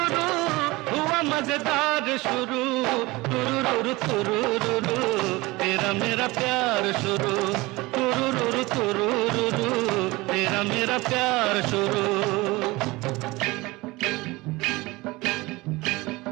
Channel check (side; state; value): left; quieter; 21.7 dB